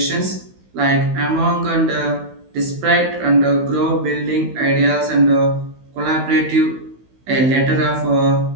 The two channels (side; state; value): left; late; 16 ms